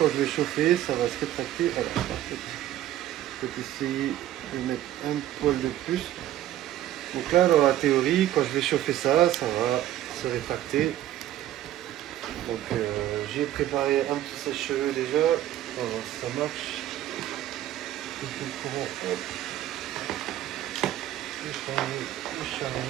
je vais chauffer, ça va se rétracter. Alors, parfait. Je vais essayer de mettre un poil de plus. Donc là, dans la théorie, quand je vais chauffer ça, ça va se rétracter. Donc j'ai préparé un petit sèche-cheveux déjà. On va voir si ça marche. Le courant, hop. Le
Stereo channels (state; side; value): quieter; left; 13.0 dB